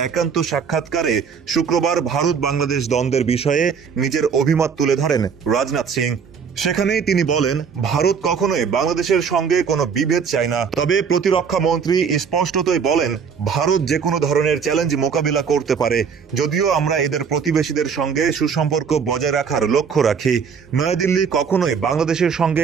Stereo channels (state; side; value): quieter; left; 6.4 dB